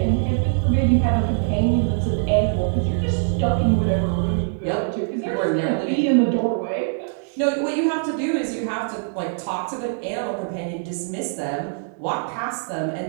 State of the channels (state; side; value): silent; left; 64 dB below the other